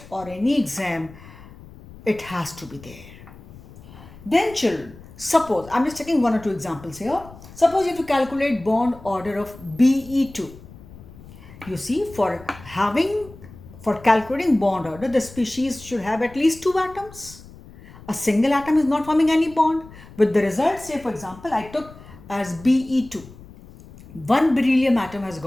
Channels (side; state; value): left; noise; rumble, 19 dB below the sound